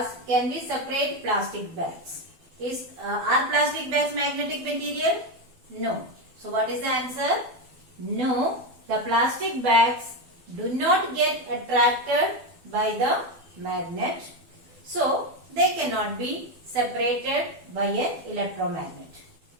can we separate plastic bags? Are plastic bags magnetic material? No. So what is the answer? No, the plastic bags do not get attracted by the magnet. So they cannot be separated by an electromagnet.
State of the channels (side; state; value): left; late; 12 ms